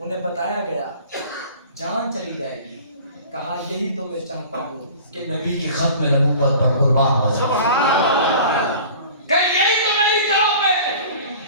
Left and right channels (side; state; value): both; inverted; correlation -0.43